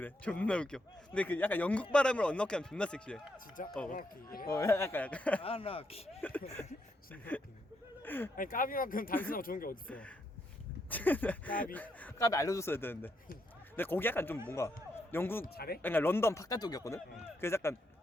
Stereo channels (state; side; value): normal; both; correlation 0.78